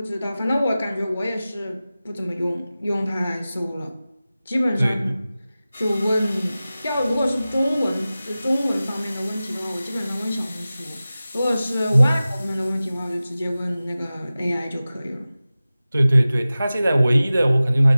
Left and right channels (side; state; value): both; inverted; correlation -0.96